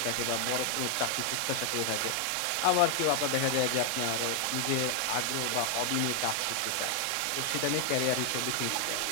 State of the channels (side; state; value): both; different; correlation 0.00